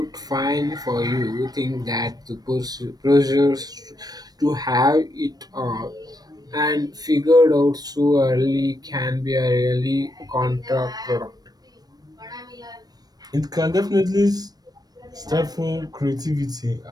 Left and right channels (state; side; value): late; left; 0.19 ms